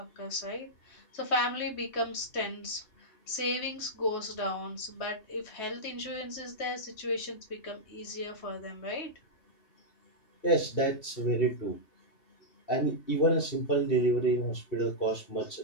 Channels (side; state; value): right; late; 3.2 ms